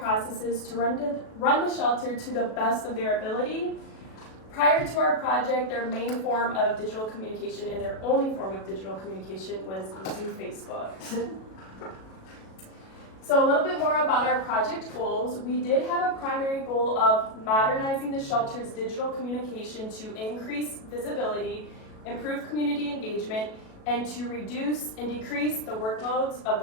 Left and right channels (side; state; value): right; late; 37 ms